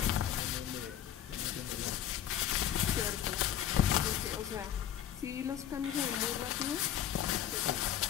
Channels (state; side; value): quieter; right; 10.6 dB